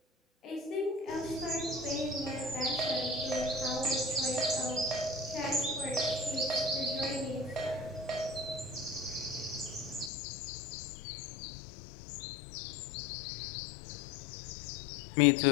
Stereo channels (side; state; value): right; drops out; at 10.1 s